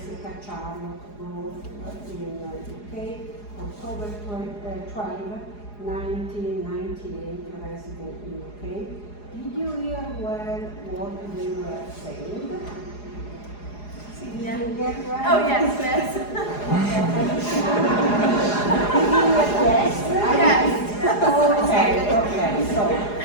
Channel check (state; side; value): late; right; 4.8 ms